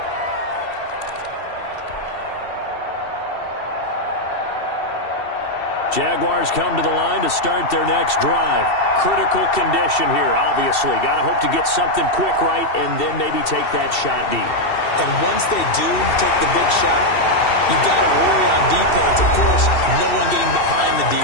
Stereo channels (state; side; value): late; right; 2.7 ms